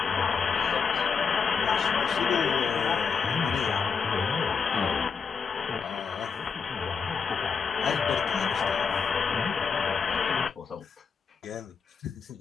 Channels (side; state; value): right; quieter; 5.8 dB